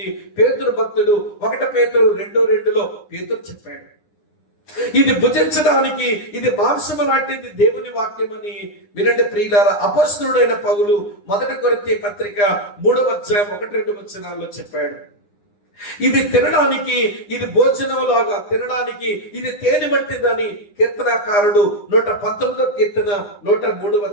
పేతురు భక్తుడు 1 పేతురు 2:2లో పేతురు చెప్పాడు. ఇది భుజించడానికి ఇది మాంసము లాంటిది దేవుని వాక్యం అని వినండి ప్రియులారా. అపోస్తలుడైన పౌలు 1 కొరింథీ పత్రిక 3వ అధ్యాయం 1-2 వచనాల్లో చెప్పాడు. ఇది తినడానికి, ఇది భోజనం లాగా తినడానికి ఇది తేనె వంటిదని కీర్తనాకారుడు 119వ కీర్తన 103వ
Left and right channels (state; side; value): late; right; 9.8 ms